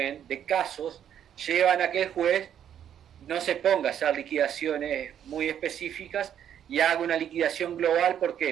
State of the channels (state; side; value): quieter; left; 9.6 dB